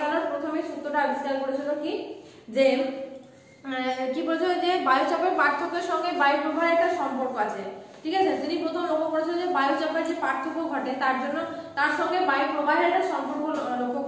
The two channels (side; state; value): both; identical; correlation 1.00